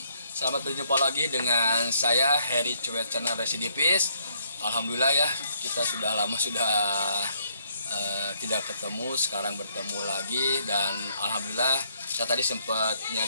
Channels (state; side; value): inverted; both; correlation -0.69